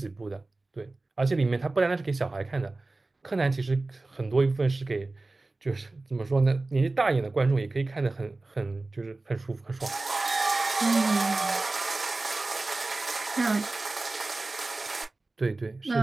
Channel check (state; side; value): quieter; left; 3.2 dB